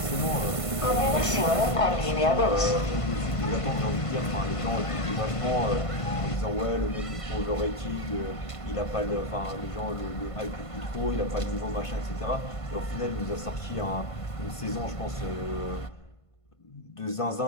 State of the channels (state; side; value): late; right; 1.5 ms